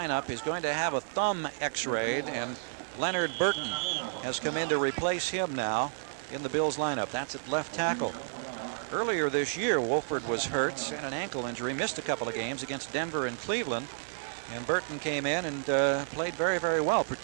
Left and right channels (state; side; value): silent; left; digital silence